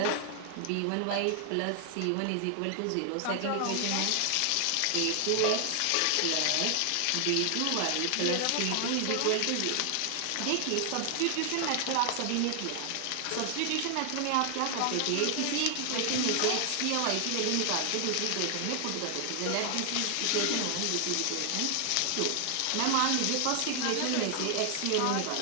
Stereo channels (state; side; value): different; both; correlation 0.00